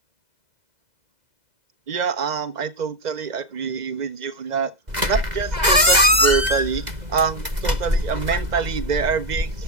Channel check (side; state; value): left; late; 2.0 ms